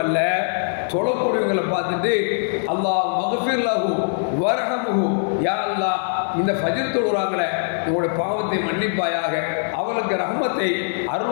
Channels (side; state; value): right; silent; digital silence